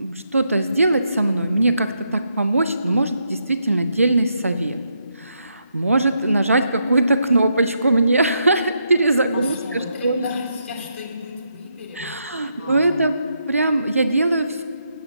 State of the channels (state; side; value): inverted; both; correlation -0.79